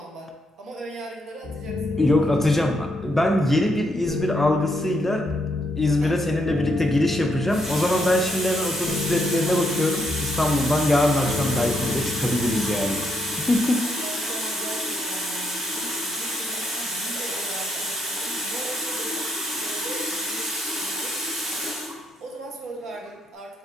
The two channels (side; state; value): both; normal; correlation 0.76